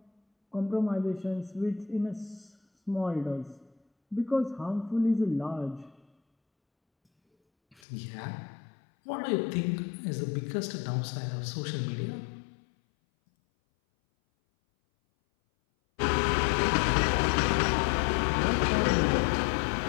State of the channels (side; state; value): right; drops out; at 7.8 s